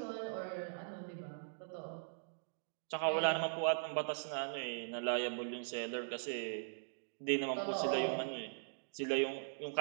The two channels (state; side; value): silent; left; digital silence